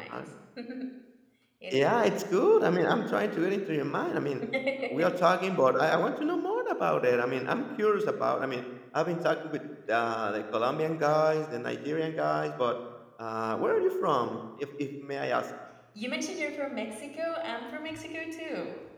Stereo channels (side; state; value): both; identical; correlation 1.00